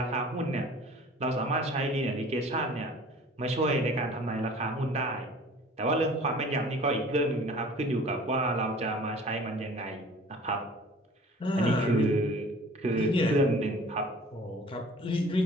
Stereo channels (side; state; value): both; normal; correlation 0.47